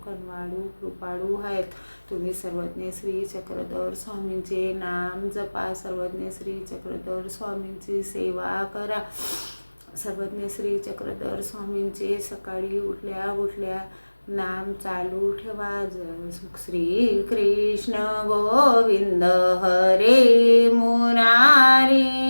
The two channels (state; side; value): inverted; both; correlation -1.00